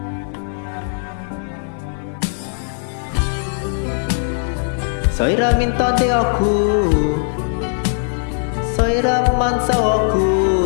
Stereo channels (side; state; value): right; silent; digital silence